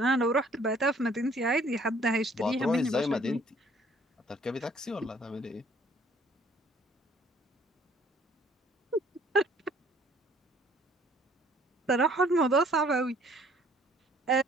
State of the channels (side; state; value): both; normal; correlation 0.59